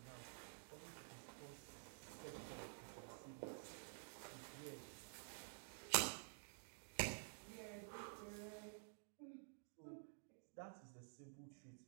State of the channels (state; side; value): silent; left; digital silence